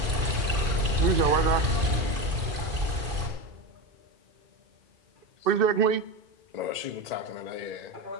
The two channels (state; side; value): late; left; 2.5 ms